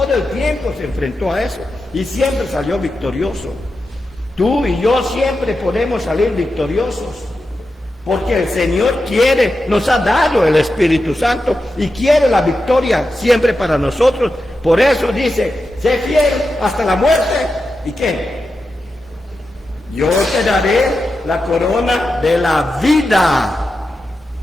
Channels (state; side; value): normal; both; correlation 0.90